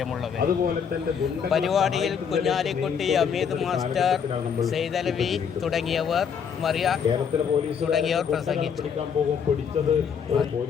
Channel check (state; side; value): quieter; right; 7.1 dB